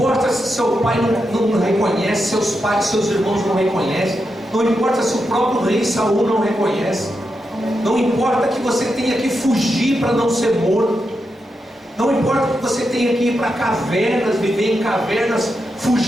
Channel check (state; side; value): normal; both; correlation 0.86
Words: se seu pai não reconhece, seus pais, seus irmãos não reconhecem. Não importa se o próprio rei Saul não reconhece. Não importa que você tenha que fugir para não ser morto. Não importa que você tenha que ir para cavernas, viver em cavernas,